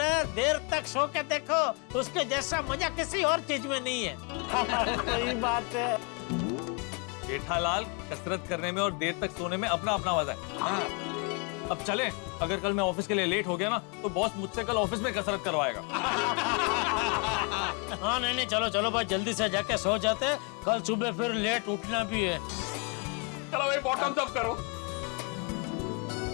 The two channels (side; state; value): right; quieter; 33.5 dB